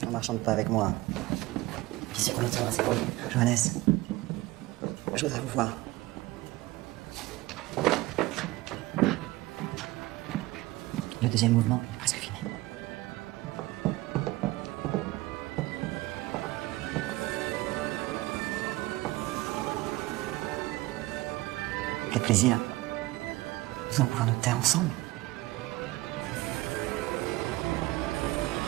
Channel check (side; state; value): left; quieter; 19.3 dB